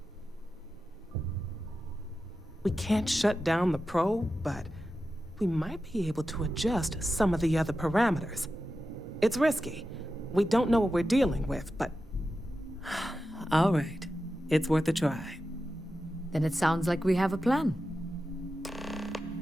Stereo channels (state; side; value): normal; both; correlation 0.91